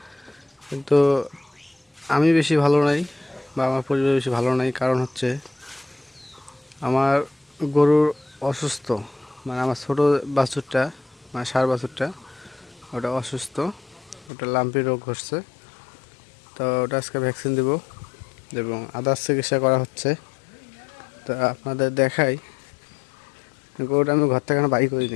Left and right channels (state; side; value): drops out; right; at 14.3 s